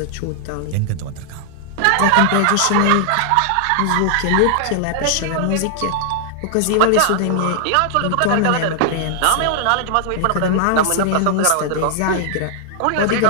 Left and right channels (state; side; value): different; both; correlation 0.00